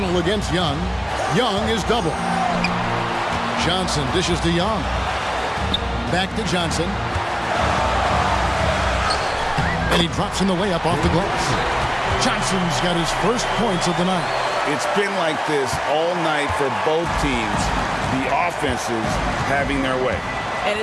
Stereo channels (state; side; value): identical; both; correlation 1.00